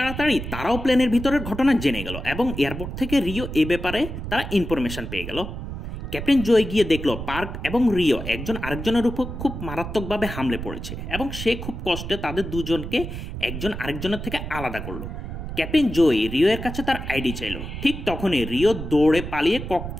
তারাও প্লেনের ভিতরের ঘটনা জেনে গেল এবং এয়ারপোর্ট থেকে রিও এ ব্যাপারে তারা ইনফরমেশন পেয়ে গেল। ক্যাপ্টেন জয় গিয়ে দেখলো পার্ক এবং রিও একজন আরেকজনের উপর খুব মারাত্মকভাবে হামলে পড়েছে এবং সে খুব কষ্টে তাদের দুজনকে একজন আরেকজনের থেকে আলাদা করলো। ক্যাপ্টেন জয় রিও এর কাছে তার আইডি চাইলো। ঠিক তখনই রিও দৌড়ে পালিয়ে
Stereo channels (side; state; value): right; noise; rumble, 7 dB below the sound